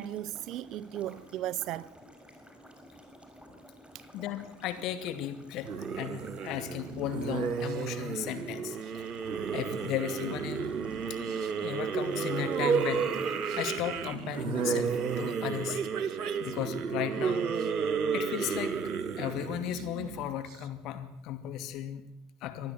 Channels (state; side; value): normal; both; correlation 0.52